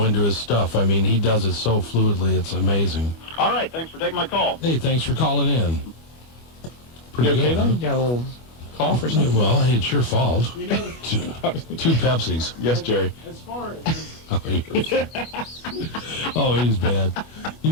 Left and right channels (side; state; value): right; late; 25 ms